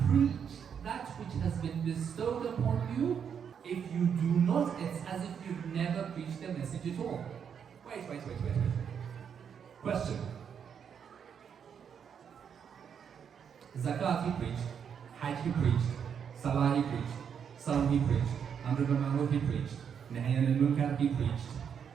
preach that which has been bestowed upon you. If you do not, it's as if you've never preached the message at all. Wait. Question. Zakat he preached, Hajj he preached, Salah he preached, Salam he preached, Amr bil Ma'ruf he preached, Nahy anil Munkar he preached,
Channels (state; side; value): quieter; left; 7.5 dB